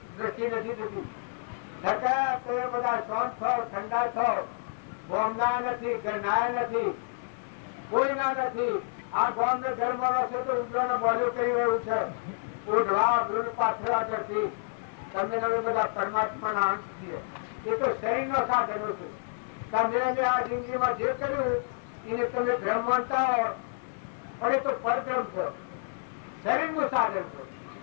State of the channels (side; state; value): right; silent; digital silence